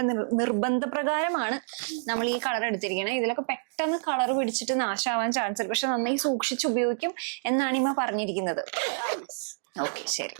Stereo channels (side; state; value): left; silent; digital silence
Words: നിർബന്ധപ്രകാരമാണ് നമ്മൾ ഈ കളർ എടുത്തിരിക്കുന്നത്. ഇതിലൊക്കെ പെട്ടെന്ന് കളർ പിടിച്ചിട്ട് നാശമാവാൻ ചാൻസ് ഉണ്ട്. പക്ഷെ നന്നായി സൂക്ഷിച്ച് ഉപയോഗിക്കും എന്നാണ് ഇമ്മ പറഞ്ഞിരിക്കുന്നത്. ഓക്കെ, ശരി,